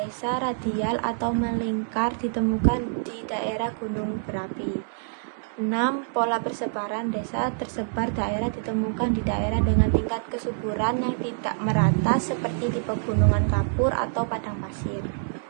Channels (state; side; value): silent; left; digital silence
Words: radial atau melingkar ditemukan di daerah gunung berapi. 6. Pola persebaran desa tersebar daerah ditemukan di daerah dengan tingkat kesuburan yang tidak merata seperti di pegunungan kapur atau padang pasir.